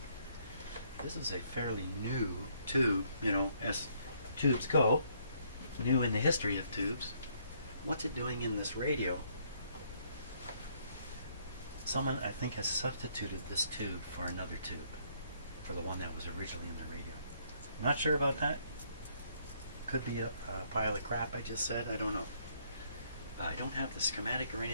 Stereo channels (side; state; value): both; inverted; correlation -0.68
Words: This is a fairly new tube, you know, as tubes go. New in the history of tubes. What's it doing in this radio? Someone, I think, has substituted this tube for another tube, for the one that was originally in the radio. Not sure about that. Could be a pile of crap I just said, I don't know. I don't have the schematic or